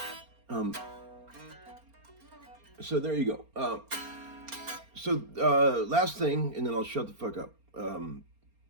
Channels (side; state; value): left; late; 4.3 ms